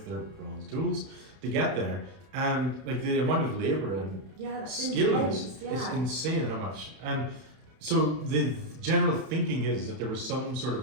their bronze tools to get there, and like the amount of labor and skill is insane. How much? And so the general thinking is that there was some sort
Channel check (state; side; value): late; left; 31 ms